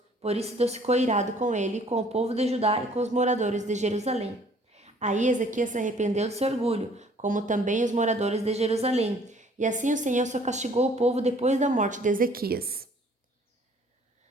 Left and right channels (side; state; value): both; normal; correlation 0.57